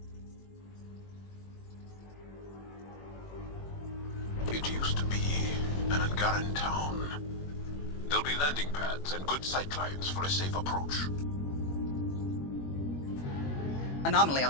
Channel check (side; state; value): right; late; 21 ms